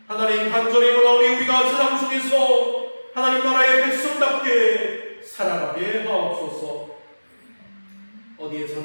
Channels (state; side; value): inverted; both; correlation -1.00